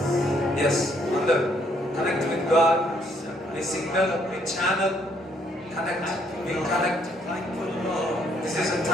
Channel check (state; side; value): normal; both; correlation 0.68